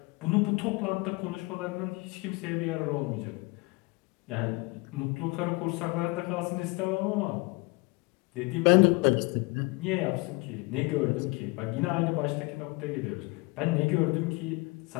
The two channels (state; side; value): quieter; right; 26.0 dB